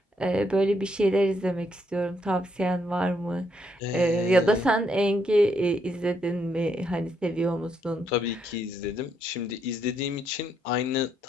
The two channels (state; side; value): normal; both; correlation 0.75